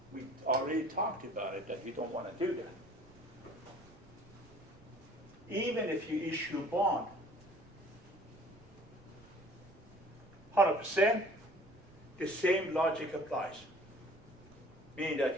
we already talked about it, that you don't want to do that. Even if you issue bond, 100%, the same logic applies. Meaning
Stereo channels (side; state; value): right; noise; rumble, 24 dB below the sound